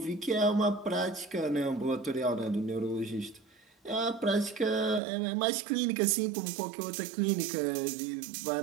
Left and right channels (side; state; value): left; drops out; at 5.0 s